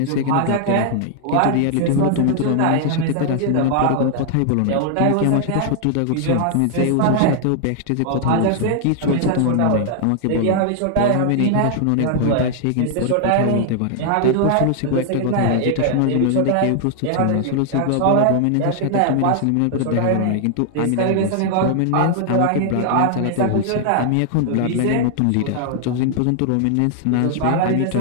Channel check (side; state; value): both; different; correlation 0.00